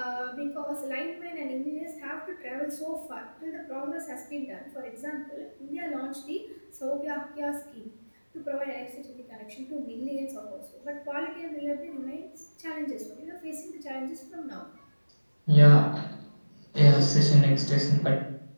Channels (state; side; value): inverted; both; correlation -1.00